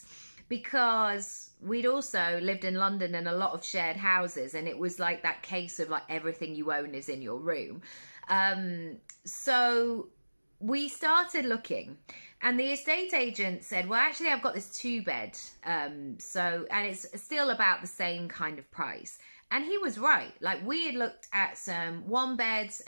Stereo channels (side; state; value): both; inverted; correlation -1.00